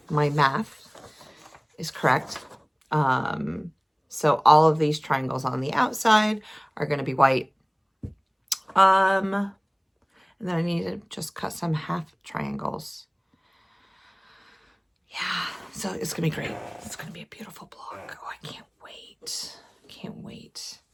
my math is correct. So all of these triangles on the outside are going to be white. And then I need to just cut some half triangles. Yeah, so it's going to be great. It's going to be a beautiful block. Oh, I can't wait. Can't wait.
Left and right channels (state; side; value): identical; both; correlation 1.00